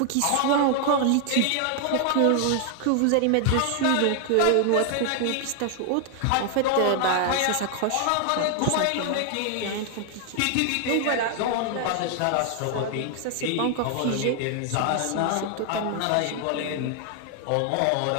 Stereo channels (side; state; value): both; different; correlation 0.00